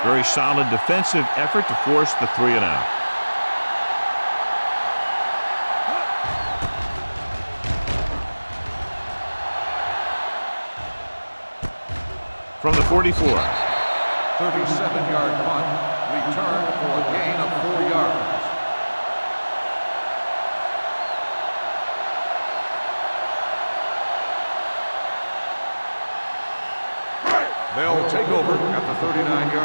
Very solid defensive effort to force the 3-and-out. From the 44. 37-yard punt, returned for a gain of 4 yards. They'll take over at the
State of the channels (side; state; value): both; inverted; correlation -1.00